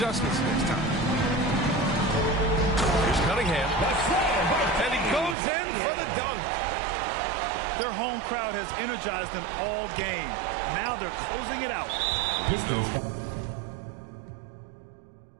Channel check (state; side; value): drops out; left; at 5.4 s